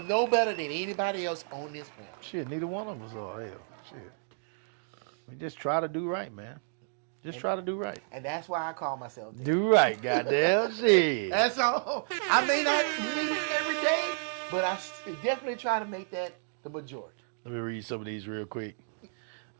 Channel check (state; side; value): silent; left; digital silence